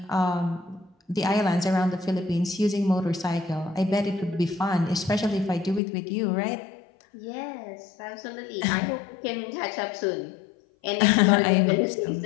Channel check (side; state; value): right; drops out; at 5.8 s